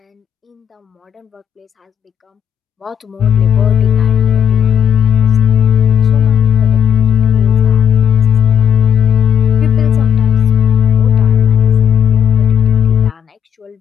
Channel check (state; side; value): quieter; right; 8.4 dB